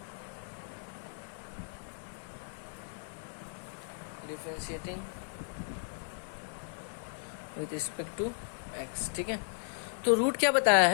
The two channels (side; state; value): right; silent; digital silence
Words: with respect to x। ठीक है, तो रूट क्या बताया